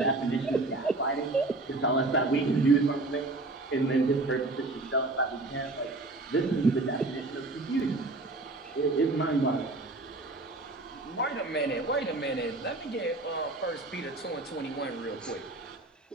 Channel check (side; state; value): left; quieter; 3.0 dB